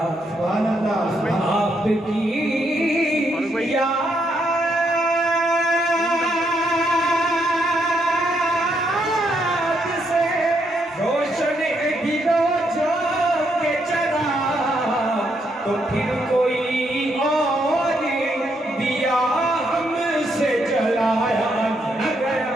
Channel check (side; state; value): both; normal; correlation 0.76